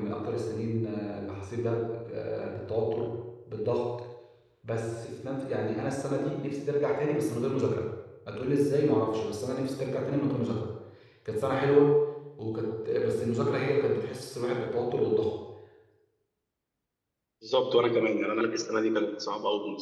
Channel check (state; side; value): identical; both; correlation 1.00